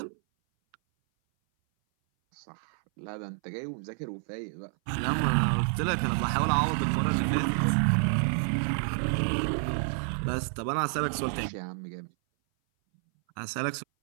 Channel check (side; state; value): left; silent; 58 dB below the other